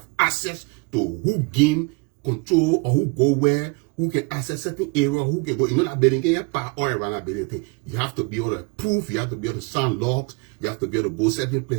access to who game control or who go where, who can access certain area, who can go. You know that building can get power all around that building thing. You have to be able to prove, you have to be able to sign logs, you have to be able to go certain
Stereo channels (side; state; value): left; quieter; 30.1 dB